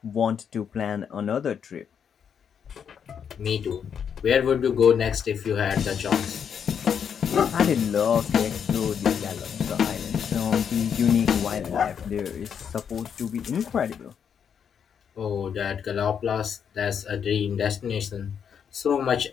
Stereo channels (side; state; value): right; quieter; 7.6 dB